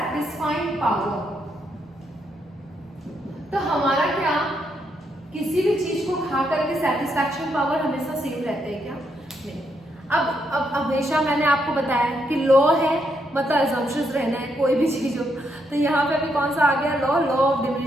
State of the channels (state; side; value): normal; both; correlation 0.78